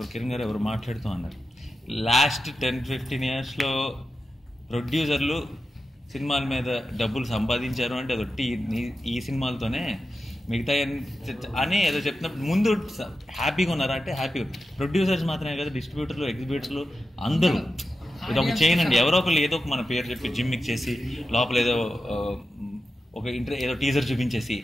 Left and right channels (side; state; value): both; normal; correlation 0.91